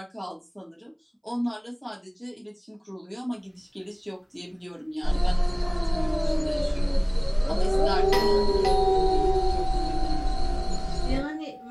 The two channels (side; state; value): both; identical; correlation 1.00